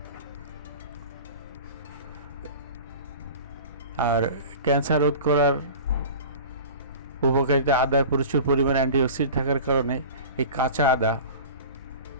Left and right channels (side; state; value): both; inverted; correlation -0.37